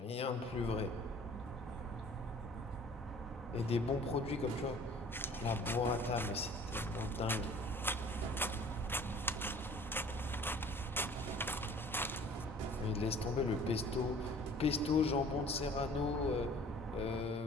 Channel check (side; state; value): both; normal; correlation 0.49